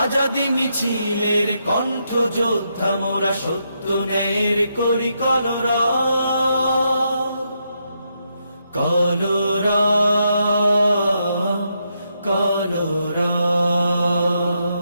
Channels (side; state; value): both; inverted; correlation -0.80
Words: মিছিলের কণ্ঠ যোদ্ধা মোরা, সত্য ন্যায়ের করি কলরব। কলরব কলরব